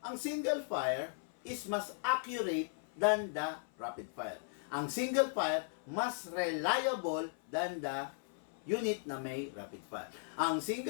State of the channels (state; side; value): silent; right; 53 dB below the other